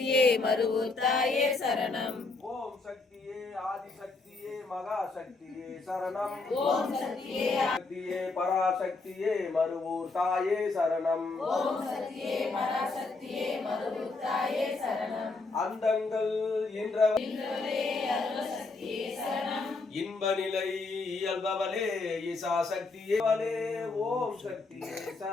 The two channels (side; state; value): right; quieter; 3.7 dB